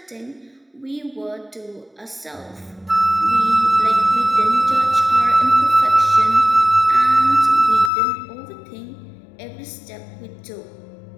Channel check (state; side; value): drops out; right; at 7.9 s